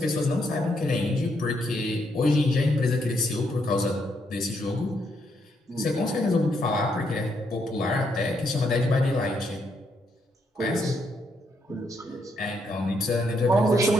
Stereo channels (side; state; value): both; normal; correlation 0.76